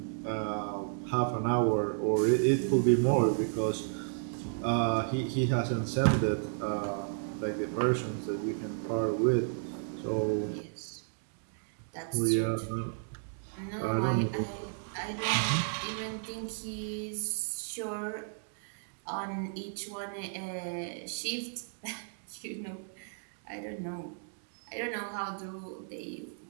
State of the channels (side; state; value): left; silent; digital silence